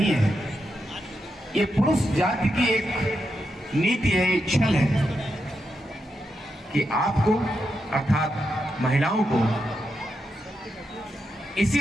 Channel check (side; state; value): both; normal; correlation 0.85